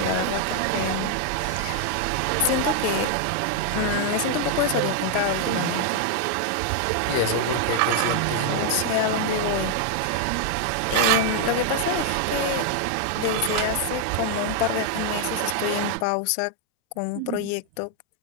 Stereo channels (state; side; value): different; both; correlation 0.00